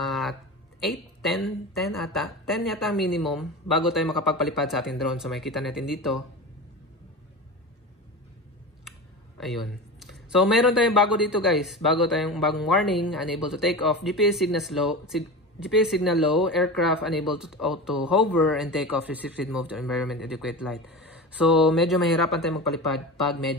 8, 10 ata. 10 yata minimum bago tayo makapagpalipad sa ating drone. So makikita natin dito. Ayun. So, meron tayong bago dito guys. Bagong warning. Unable to take off. GPS signal low. Aircraft unable to auto hover and take off. Restricted move to environment adequate light. So, medyo mahirapan tayong magpalipad pag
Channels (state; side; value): normal; both; correlation 0.28